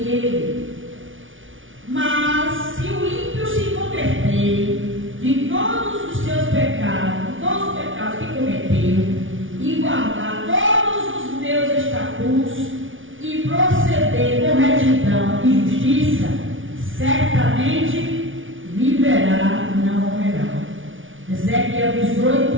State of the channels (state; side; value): late; left; 0.57 ms